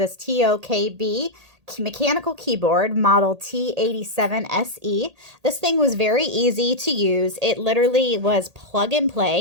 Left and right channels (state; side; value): late; left; 1.8 ms